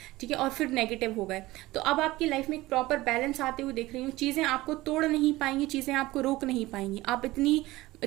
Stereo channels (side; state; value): left; quieter; 18.6 dB